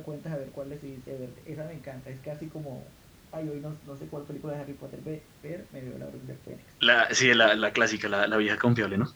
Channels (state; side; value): identical; both; correlation 1.00